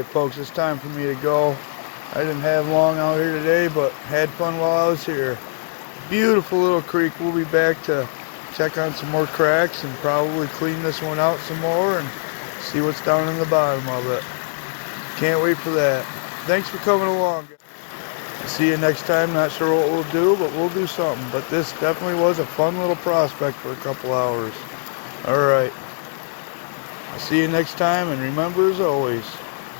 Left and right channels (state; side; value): silent; right; digital silence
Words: folks, it's time for me to go. I didn't have long out here today, but had fun while I was here. Beautiful little creek. We'll be back to check on some more cracks and probably clean this one out some more and see what's down in the bottom of it. Can't wait for that. Thanks for coming along. See you next time. Not sure what we'll do, but we'll do something. But this definitely was a fun little prospect for a couple hours. Alright. I'll see you next time, and remember, as always,